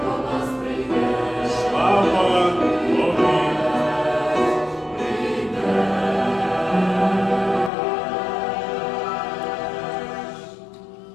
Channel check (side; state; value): right; drops out; at 7.7 s